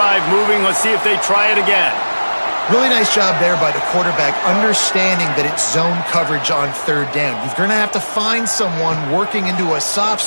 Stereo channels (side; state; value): both; inverted; correlation -1.00